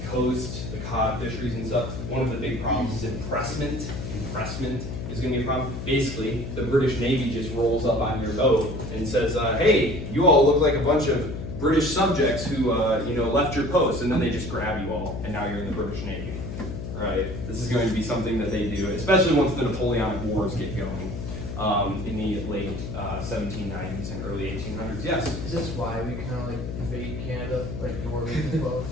coast, the cod fisheries and stuff. One of the big problems is impressment. Impressment is going to be a problem. Basically, the British Navy just rolls up on your boat and says, hey, you all look like a bunch of British subjects who left your post, and then they just grab you all, and now you're in the British Navy, right? This is going to be something that they do, especially once the Napoleonic Wars get going in the late 1790s and early 1800s. Yes? Is this why we kind of like invade Canada, like the War of 1812?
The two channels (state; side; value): noise; left; hum, 6 dB below the sound